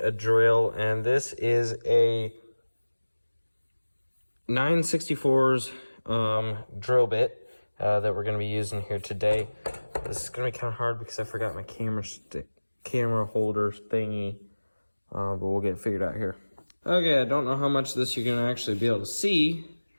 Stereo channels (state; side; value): inverted; both; correlation -1.00